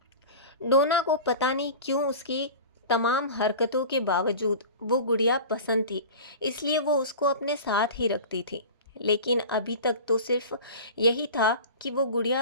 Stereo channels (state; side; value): inverted; both; correlation -0.35